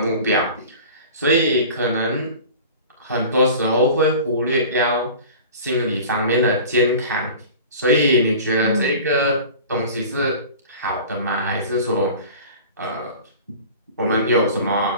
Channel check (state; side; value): inverted; both; correlation -0.40